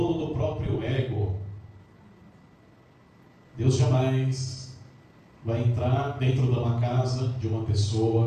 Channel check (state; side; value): identical; both; correlation 1.00